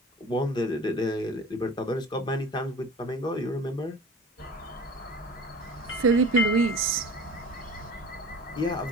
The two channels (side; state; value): both; normal; correlation 0.41